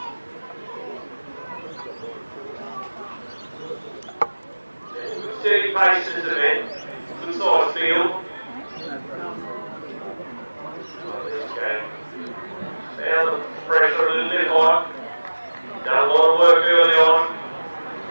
Steady pace in this event, good size field. Found the pressure a little bit high. Done a lot of work early on.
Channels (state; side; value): inverted; both; correlation -1.00